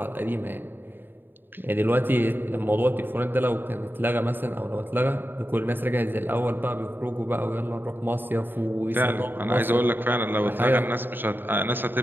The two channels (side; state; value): left; late; 0.095 ms